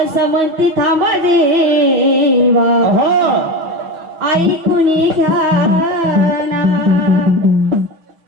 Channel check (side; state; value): left; late; 6.0 ms